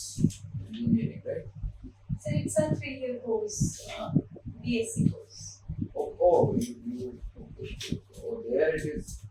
engineering, right? So it's a 3-year course, BSc course. There it is.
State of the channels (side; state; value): both; identical; correlation 1.00